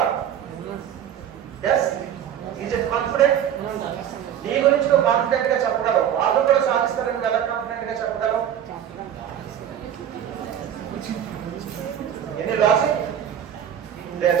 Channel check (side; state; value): left; quieter; 9.7 dB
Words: Yes, is it confident? నీ గురించి నువ్వు కాన్ఫిడెంట్ గా చెప్పగలవు. వాళ్ళు కూడా సాధిస్తారని ఎలా కాన్ఫిడెంట్ గా చెప్పగలవు? ఎన్ని లాజిక్